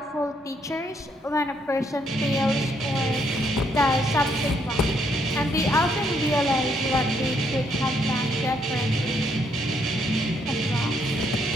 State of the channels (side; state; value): both; normal; correlation 0.72